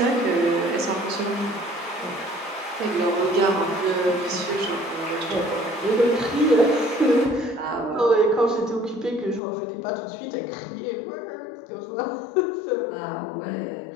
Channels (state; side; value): drops out; right; at 9.4 s